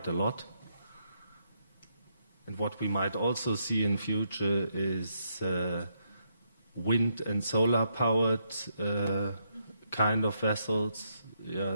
a lot. And what we might also see in future is wind and solar powered kind of vessels.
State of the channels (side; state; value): both; inverted; correlation -0.78